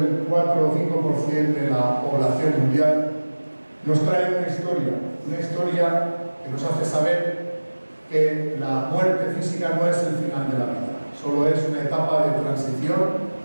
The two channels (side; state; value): both; inverted; correlation -1.00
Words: 4 o 5% de la población mundial, nos traen una historia que nos hace saber que la muerte física no es el final de la vida, solo es una etapa de transición